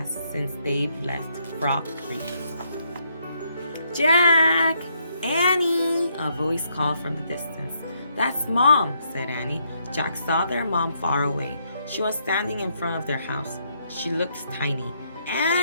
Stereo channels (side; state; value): both; inverted; correlation -0.74